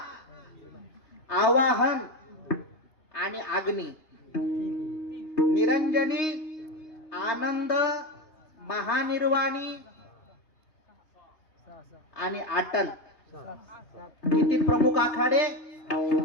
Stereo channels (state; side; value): late; right; 3.2 ms